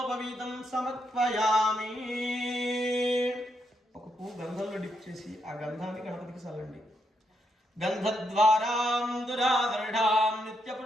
సమర్పయామి. ఒక పువ్వు గంధంలో డిప్ చేసి ఆ గంధాన్ని గణపతికి చల్లండి. గంధద్వారాం దురాదర్ఢాం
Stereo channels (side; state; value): both; normal; correlation 0.79